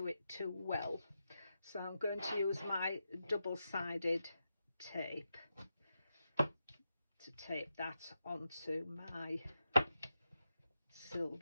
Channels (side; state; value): both; inverted; correlation -0.88